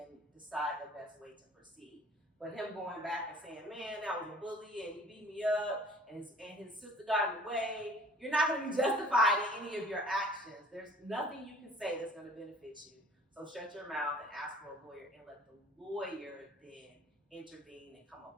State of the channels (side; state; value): both; normal; correlation 0.51